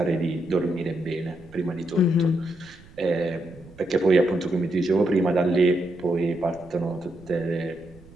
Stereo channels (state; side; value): noise; right; rumble, 23 dB below the sound